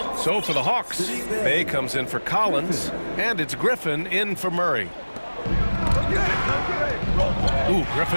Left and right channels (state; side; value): inverted; both; correlation -1.00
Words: So for the Hawks, Bay comes in for Collins, and it's Griffin in for Murray. Ooh,